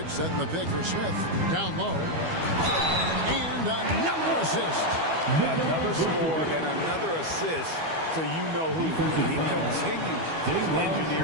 setting the pick for Smith. Down low. And another assist. Another score and another assist to you-know-who. He continues to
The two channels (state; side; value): late; left; 12 ms